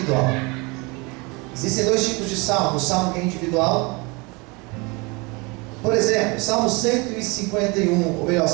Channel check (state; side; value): quieter; left; 27.5 dB